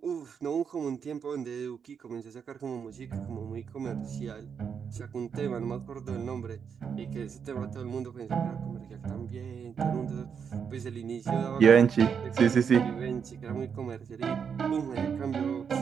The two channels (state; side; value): quieter; left; 6.9 dB